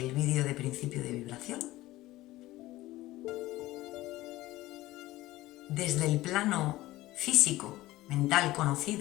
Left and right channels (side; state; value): right; quieter; 17.2 dB